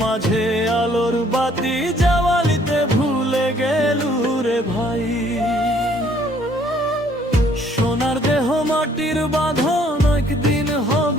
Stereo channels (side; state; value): both; normal; correlation 0.62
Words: মাঝে আলোর বাতি জ্বালিতে ভুলে গেলু রে ভাই। সোনার দেহ মাটির বাঁধন একদিন